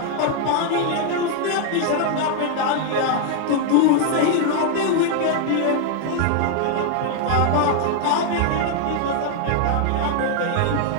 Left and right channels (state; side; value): different; both; correlation 0.00